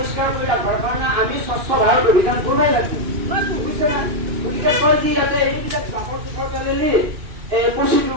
কৰি ৰাখিবৰ কাৰণে আমি স্বচ্ছ ভাৰত অভিযান কৰিবই লাগিব বুজিছে না গতিকে কয় যে ইয়াতে এইবিলাক জাবৰ জোথৰ পেলালি পচি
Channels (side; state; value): left; late; 2.6 ms